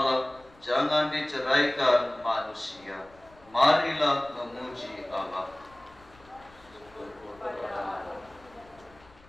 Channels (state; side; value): noise; left; rumble, 27 dB below the sound